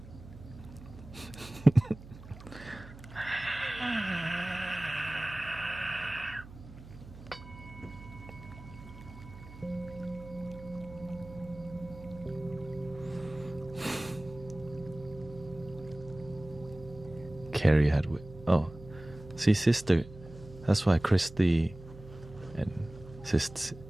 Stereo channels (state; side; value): noise; right; hum, 16 dB below the sound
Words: Carrie had see, sister, that's why Christy and Sister